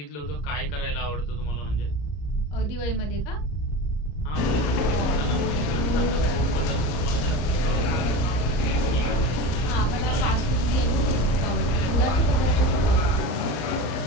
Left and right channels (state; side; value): late; right; 34 ms